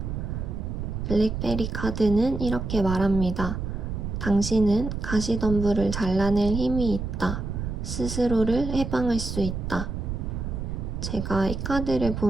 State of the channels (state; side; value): noise; right; rumble, 4 dB below the sound